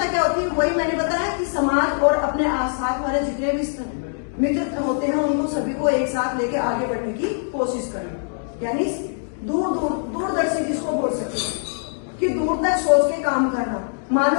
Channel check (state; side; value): silent; right; digital silence